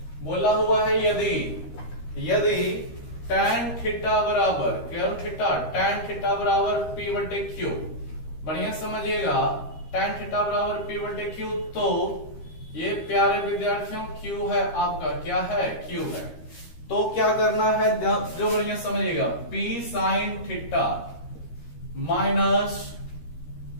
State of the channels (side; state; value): right; late; 13 ms